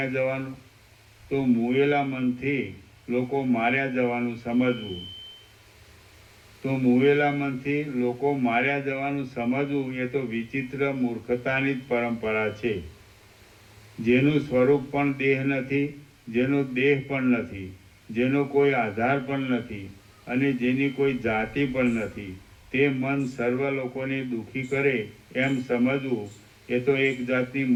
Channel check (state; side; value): identical; both; correlation 1.00